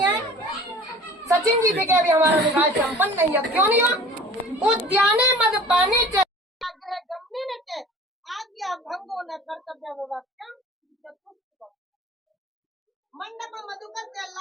हैं सचिन जी से कि अभी हमारा विवाह संपन्न नहीं है। क्यों नहीं हुआ? उद्याने मद पाने आज्ञा भंगो न कर्तव्य मंडप मधुकर से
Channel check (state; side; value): normal; both; correlation 0.44